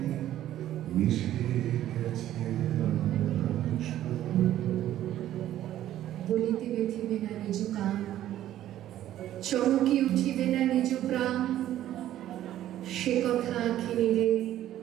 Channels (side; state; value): left; quieter; 12.6 dB